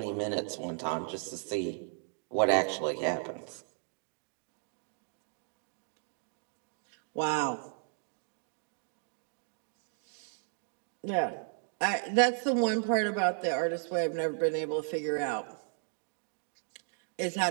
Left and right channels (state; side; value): silent; left; 55 dB below the other